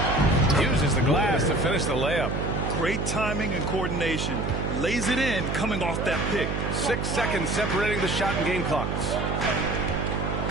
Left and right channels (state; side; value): noise; right; hum, 2 dB below the sound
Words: Uses the glass to finish the layup. Great timing and coordination. Lays it in coming off that pick. 6 seconds separating the shot and game clocks.